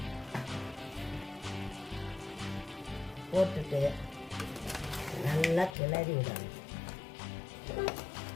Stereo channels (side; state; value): right; drops out; at 5.8 s